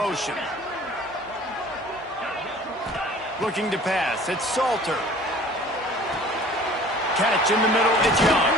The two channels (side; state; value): both; normal; correlation 0.48